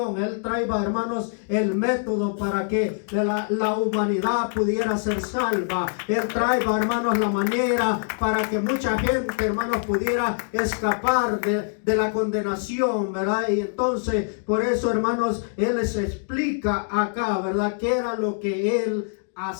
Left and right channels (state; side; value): silent; right; digital silence